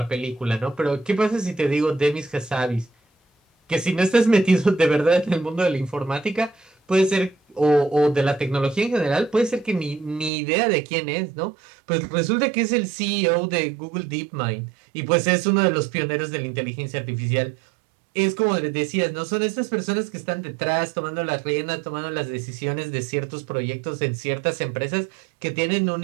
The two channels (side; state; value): left; drops out; at 10.3 s